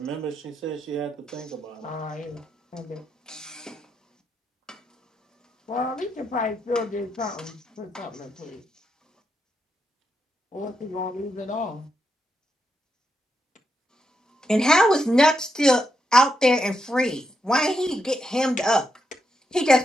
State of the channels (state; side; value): normal; both; correlation 0.83